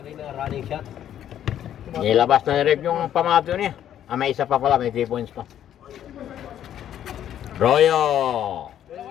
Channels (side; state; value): right; quieter; 10.7 dB